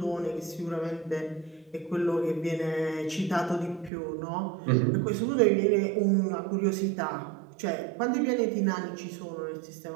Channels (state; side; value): drops out; left; at 3.9 s